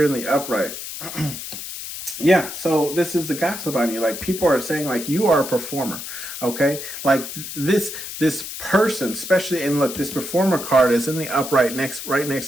in the upright. Yeah, so this is the gossip on you. Like people are saying like you are a performer, okay? Like this person, especially, and look, this performer card is in the upright right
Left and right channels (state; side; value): noise; left; hiss, 9 dB below the sound